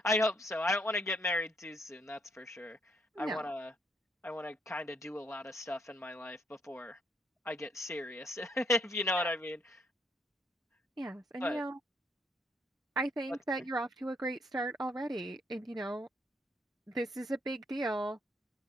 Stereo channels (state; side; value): normal; both; correlation 0.72